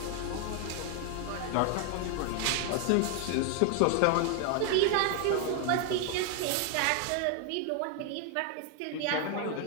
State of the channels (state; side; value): different; both; correlation 0.00